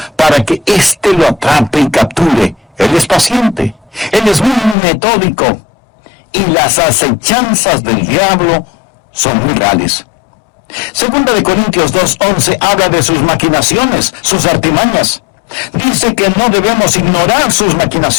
para que éste lo atrape y capture. Él es paciente. Él es muy metódico. Y las acechanzas del diablo son muy reales. Segunda de Corintios 2:11 habla de sus maquinaciones, sus artimañas. Dice que no debemos ignorar sus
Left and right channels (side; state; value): right; drops out; at 4.8 s